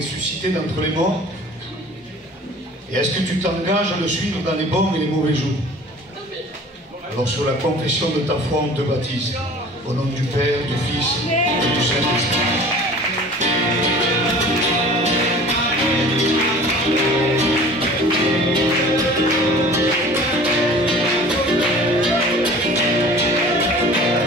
d'entre les morts? Et est-ce que tu t'engages à le suivre dans les bons et les mauvais jours? Alors, sur la confession de ta foi, on te baptise. Au nom du Père, du Fils et du Saint-Esprit.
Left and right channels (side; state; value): both; normal; correlation 0.45